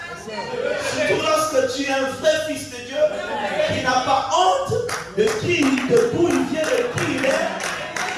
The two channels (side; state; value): both; identical; correlation 1.00